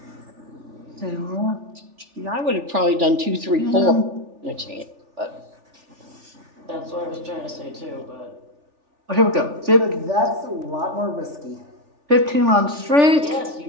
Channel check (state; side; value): late; left; 3.4 ms